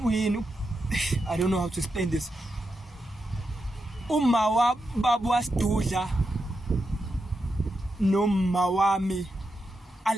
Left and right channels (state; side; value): normal; both; correlation 0.86